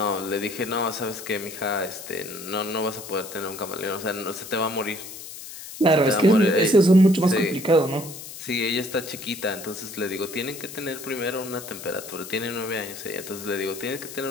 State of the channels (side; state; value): left; noise; hiss, 12 dB below the sound